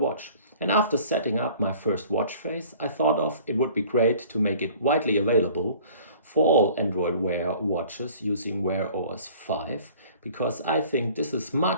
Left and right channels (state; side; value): inverted; both; correlation -0.49